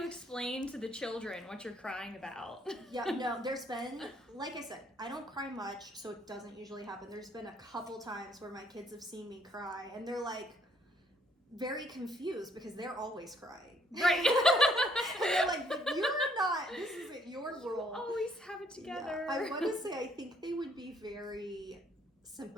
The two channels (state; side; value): normal; both; correlation 0.66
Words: explain to the children what you're crying about? Yeah, no. There's been, like I said, I don't cry much, so it doesn't usually happen. There's been a couple times where my kids have seen me cry, and they're like very confused because they're always crying. Right. And they're like, "But you're not. This isn't your world. You always have it together." Yeah. I want to say I think they would be very